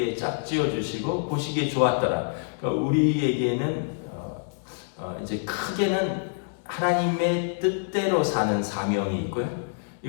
짝지어 주시고 보시기에 좋았더라. 그러니까 우리에게는 이제 크게는 하나님의 뜻대로 사는 사명이 있고요.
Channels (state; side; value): silent; right; digital silence